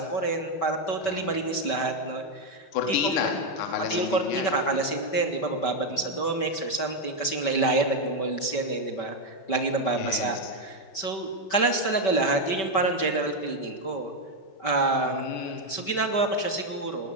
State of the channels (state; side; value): late; right; 5.2 ms